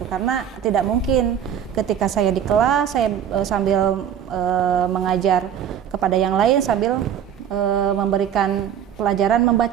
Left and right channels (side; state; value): left; quieter; 9.2 dB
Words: karena tidak mungkin ketika saya di kelas saya sambil mengajar kepada yang lain sambil memberikan pelajaran